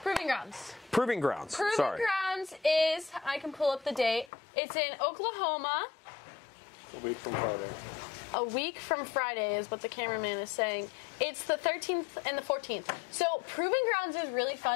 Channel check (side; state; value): right; drops out; at 4.3 s